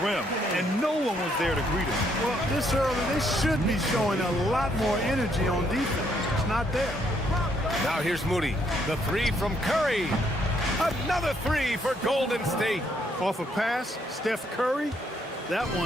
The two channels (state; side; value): normal; both; correlation 0.71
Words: rim, and no one was there to greet him. Well, this early, they should be showing a lot more energy on defense. It's not there. Now here's Moody. The 3 from Curry. Another 3 for Golden State. Off a pass, Steph Curry, that